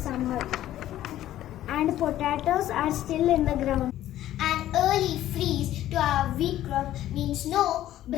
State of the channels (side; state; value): right; quieter; 13.2 dB